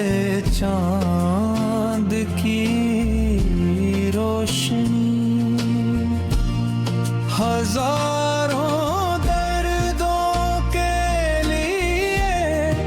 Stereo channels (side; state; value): both; identical; correlation 1.00